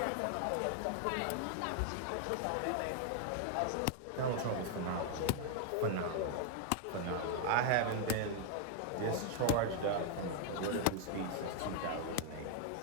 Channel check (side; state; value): both; different; correlation 0.00